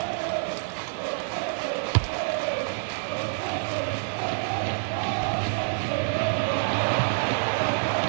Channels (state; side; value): silent; left; 60 dB below the other